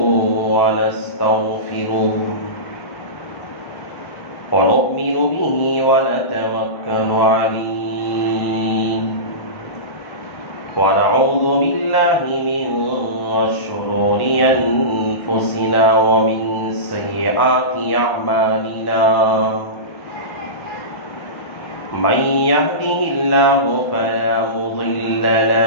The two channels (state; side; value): late; right; 1.0 ms